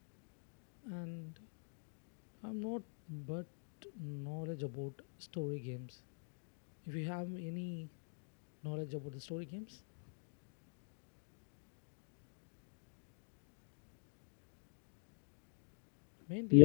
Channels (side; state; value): right; silent; digital silence